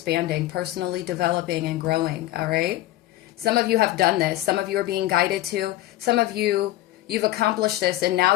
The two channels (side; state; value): right; quieter; 15.5 dB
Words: personally developing and growing. All right. Some of you have done this. Some of you are being guided to. Some of you, you've accomplished this and now